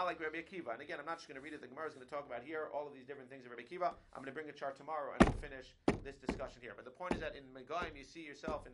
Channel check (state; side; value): identical; both; correlation 1.00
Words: like Rabbi Akiva. And again, I'm not just going to read it. The Gemara is going to talk about here all of these different things of Rabbi Akiva. I'm going to bring a chart tomorrow and we'll finish this discussion here. But the point is that in Megaim, you see yourself in